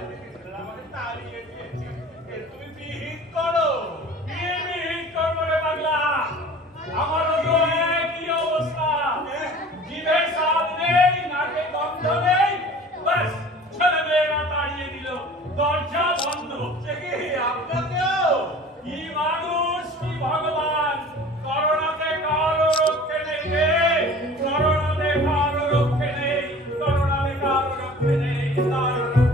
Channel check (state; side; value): normal; both; correlation 0.44